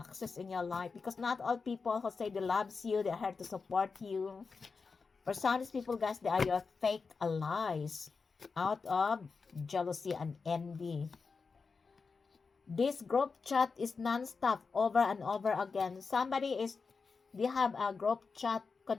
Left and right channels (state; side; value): quieter; right; 4.8 dB